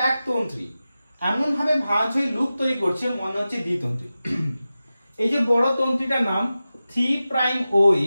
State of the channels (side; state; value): both; inverted; correlation -0.94